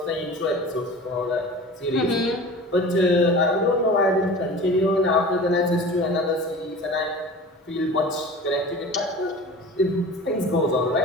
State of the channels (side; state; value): both; normal; correlation 0.38